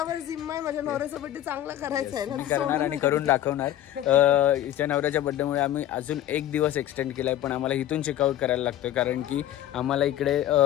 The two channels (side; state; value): right; quieter; 12.4 dB